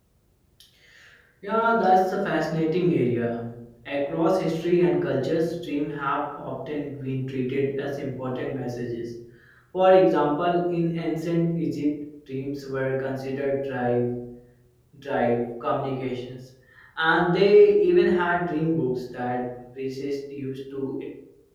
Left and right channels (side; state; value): both; identical; correlation 1.00